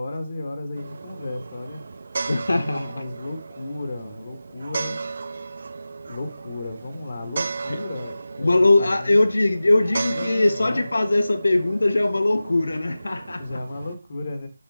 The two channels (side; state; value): both; inverted; correlation -0.96